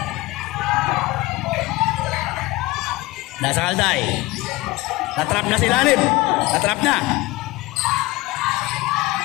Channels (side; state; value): right; quieter; 20.2 dB